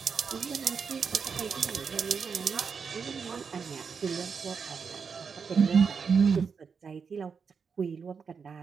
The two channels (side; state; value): left; quieter; 5.9 dB